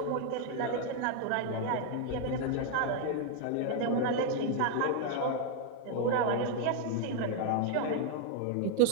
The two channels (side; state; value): both; different; correlation 0.00